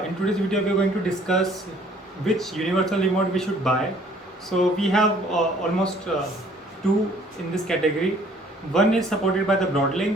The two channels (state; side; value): normal; both; correlation 0.58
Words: in today's video we are going to discuss which universal remote we should buy. So we have almost two in this category. One is supported by the